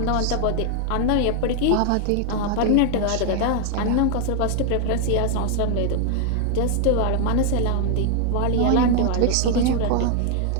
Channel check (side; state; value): both; different; correlation 0.00